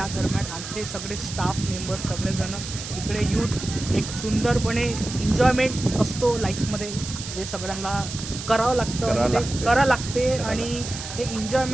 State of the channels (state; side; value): noise; right; hiss, 9 dB below the sound